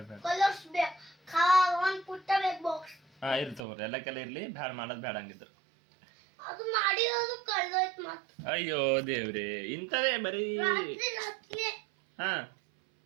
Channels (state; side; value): drops out; left; at 3.6 s